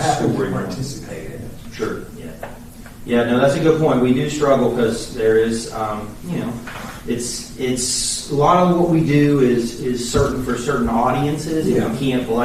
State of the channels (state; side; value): identical; both; correlation 1.00